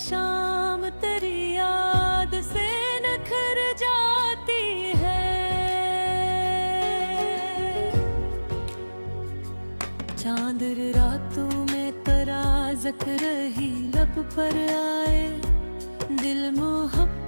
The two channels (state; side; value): inverted; both; correlation -1.00